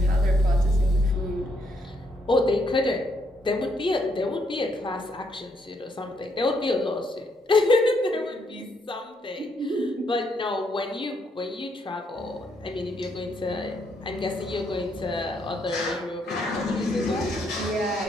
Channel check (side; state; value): both; normal; correlation 0.74